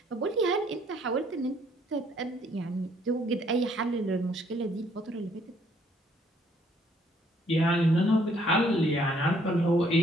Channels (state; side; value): normal; both; correlation 0.65